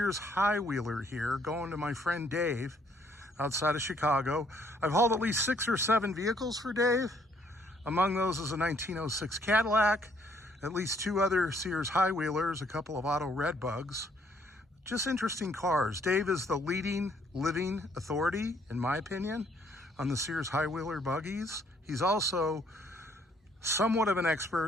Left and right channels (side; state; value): both; normal; correlation 0.66